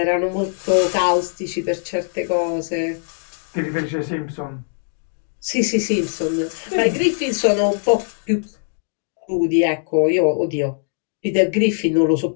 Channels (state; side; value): silent; right; digital silence